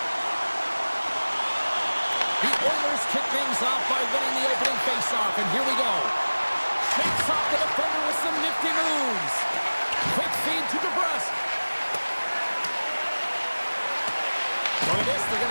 The Oilers kick things off by winning the opening faceoff, and here we go. Shakes off the defender with some nifty moves. Quick feed to DeBrusque. Look at this, they're going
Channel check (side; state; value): both; inverted; correlation -1.00